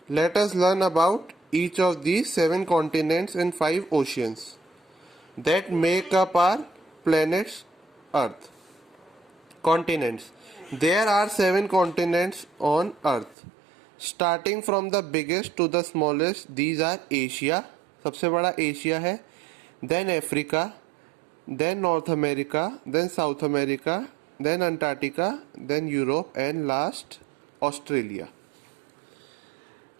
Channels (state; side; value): drops out; left; at 13.4 s